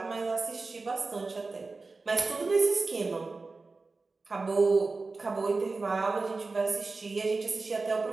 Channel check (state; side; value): quieter; left; 3.8 dB